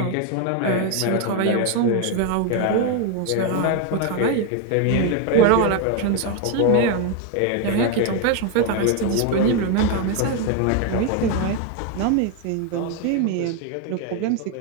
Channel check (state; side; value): different; both; correlation 0.01